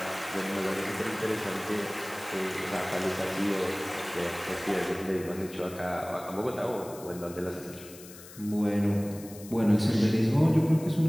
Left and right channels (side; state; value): left; noise; hiss, 17 dB below the sound